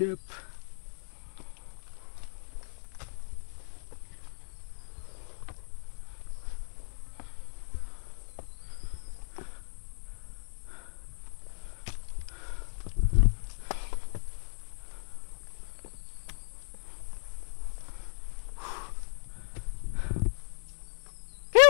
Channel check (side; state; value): right; silent; digital silence